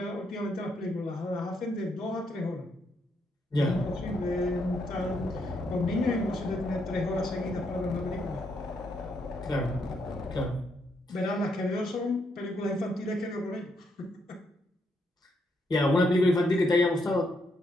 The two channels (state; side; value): normal; both; correlation 0.77